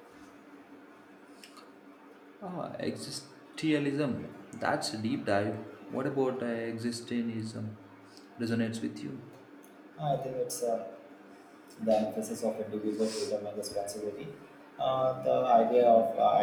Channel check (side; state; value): both; identical; correlation 1.00